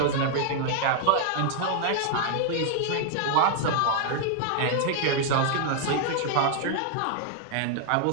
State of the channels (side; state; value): both; different; correlation 0.00